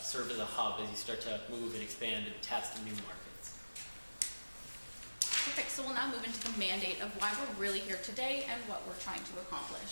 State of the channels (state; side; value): inverted; both; correlation -1.00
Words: as a hub as you start to move and expand and test new markets. Perfect, so we'll now move into the mandate of why we're really here today and what we're trying to